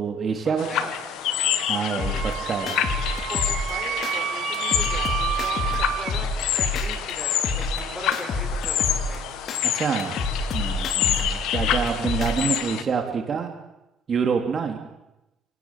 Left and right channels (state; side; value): normal; both; correlation 0.53